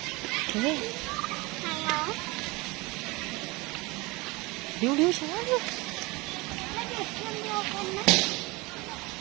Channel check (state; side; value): quieter; left; 24.1 dB